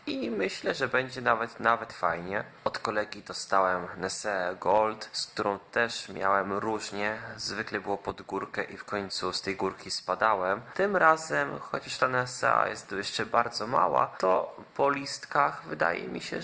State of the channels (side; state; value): both; identical; correlation 1.00